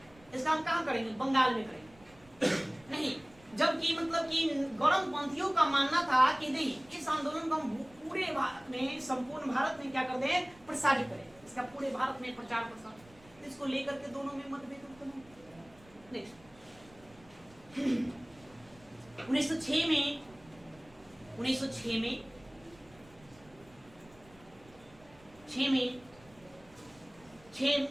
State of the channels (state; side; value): noise; right; rumble, 26 dB below the sound